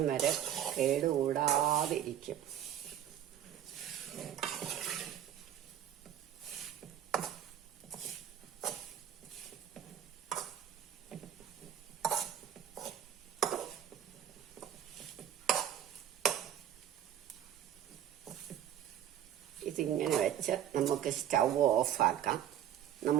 വരെ കേടുകൂടാതിരിക്കും. ഇതിങ്ങനെ വെച്ച് നമുക്ക് സ്റ്റൗ ഓഫാക്കാം.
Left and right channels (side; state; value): left; quieter; 10.6 dB